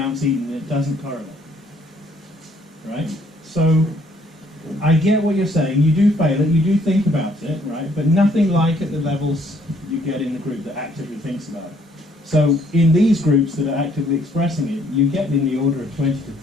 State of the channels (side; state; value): both; normal; correlation 0.65